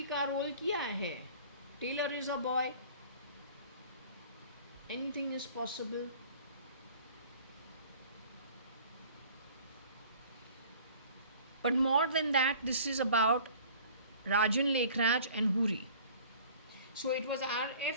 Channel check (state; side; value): inverted; both; correlation -0.48